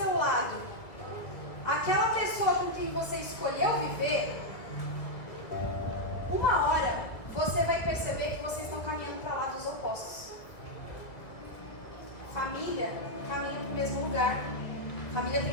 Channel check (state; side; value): late; right; 1.7 ms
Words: lado aquela pessoa com quem você escolheu viver, uma hora você vai perceber que vocês estão caminhando para lados opostos. Família caminha para o mesmo lugar. Família